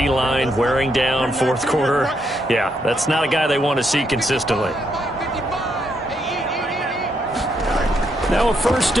wearing down 4th quarter. Yeah, that's not a guy they want to see consistently. Now a 1st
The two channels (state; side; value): normal; both; correlation 0.77